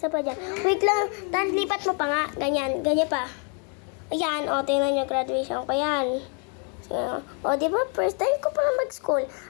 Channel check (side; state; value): right; quieter; 38.8 dB